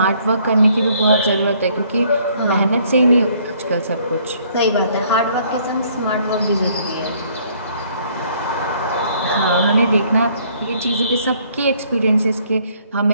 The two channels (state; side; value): inverted; both; correlation -0.63